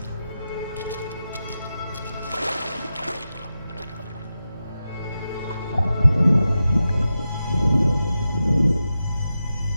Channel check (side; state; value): both; inverted; correlation -0.90